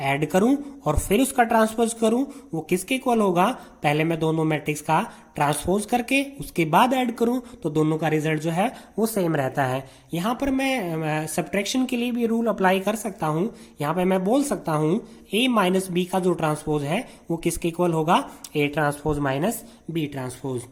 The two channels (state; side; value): identical; both; correlation 1.00